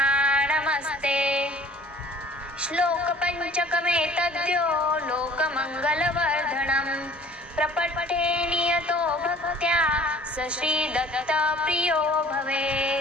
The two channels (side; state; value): both; normal; correlation 0.50